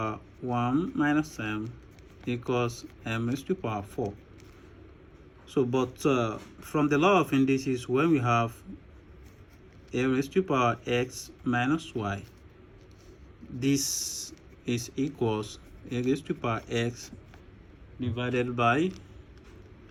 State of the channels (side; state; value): both; identical; correlation 1.00